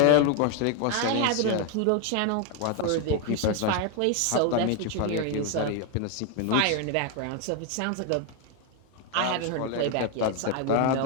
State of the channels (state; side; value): different; both; correlation 0.01